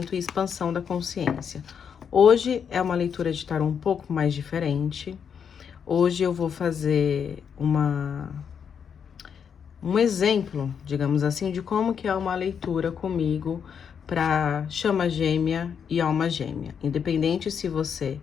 e expansão da consciência. Hoje é uma leitura de tarô um pouco mais diferente. Hoje eu vou fazer um exemplo, digamos assim, de como que é uma leitura comigo para chama gêmea e alma gêmea. Independente se você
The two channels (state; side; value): quieter; right; 7.3 dB